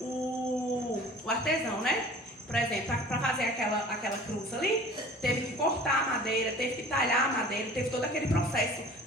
o artesão, né? Por exemplo, para fazer aquela cruz ali, teve que cortar a madeira, teve que talhar a madeira, teve todo aquele processo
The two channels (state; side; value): normal; both; correlation 0.44